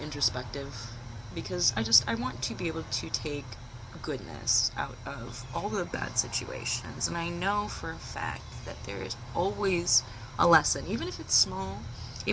introspective, because I want to be able to take goodness out of all the bad situations. And I know for a fact that there is always a lesson, even if it's small,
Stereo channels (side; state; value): both; identical; correlation 1.00